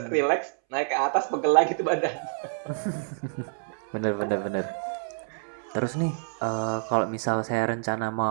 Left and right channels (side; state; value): left; silent; 60 dB below the other